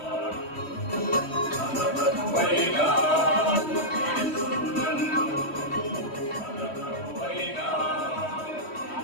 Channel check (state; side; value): late; right; 3.1 ms